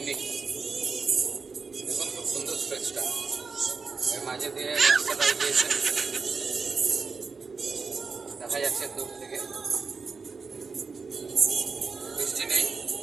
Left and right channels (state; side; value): quieter; left; 4.8 dB